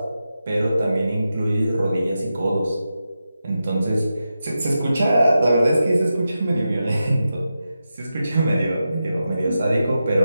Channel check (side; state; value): both; inverted; correlation -0.90